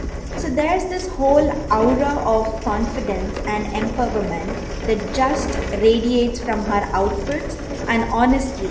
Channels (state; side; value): identical; both; correlation 1.00